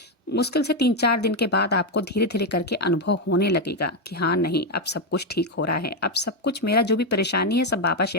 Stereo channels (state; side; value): normal; both; correlation 0.05